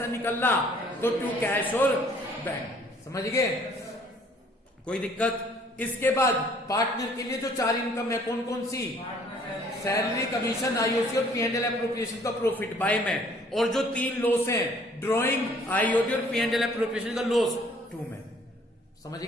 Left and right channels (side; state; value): both; normal; correlation 0.59